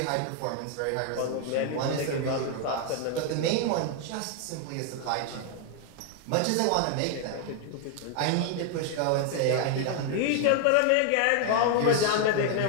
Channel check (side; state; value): both; different; correlation 0.00